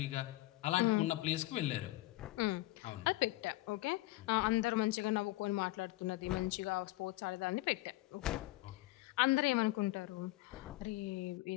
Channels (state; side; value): quieter; right; 18.7 dB